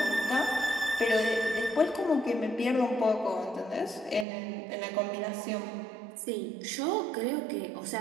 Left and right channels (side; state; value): left; drops out; at 4.2 s